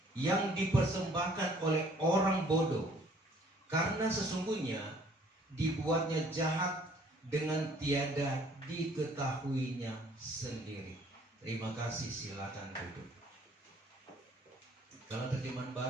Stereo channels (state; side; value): normal; both; correlation 0.58